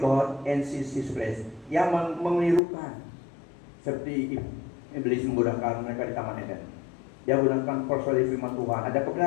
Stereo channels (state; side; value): drops out; right; at 2.6 s